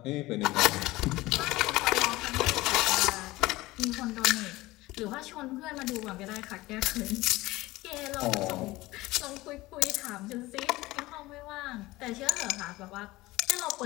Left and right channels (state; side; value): quieter; right; 19.2 dB